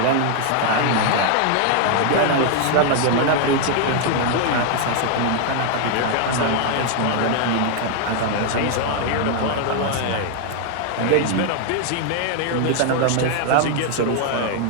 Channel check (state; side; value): different; both; correlation 0.00